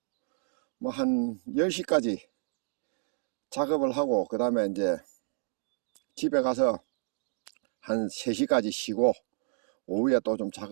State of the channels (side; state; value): left; silent; 58 dB below the other